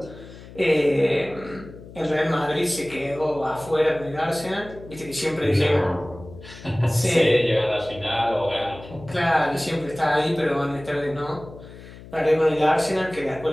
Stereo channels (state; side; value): noise; left; hum, 17 dB below the sound